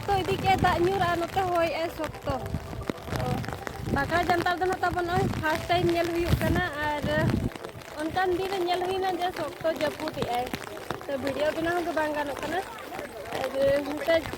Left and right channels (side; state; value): both; identical; correlation 1.00